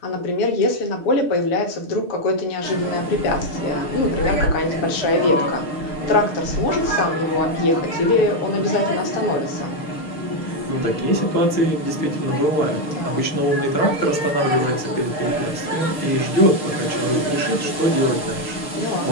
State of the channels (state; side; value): late; right; 6.6 ms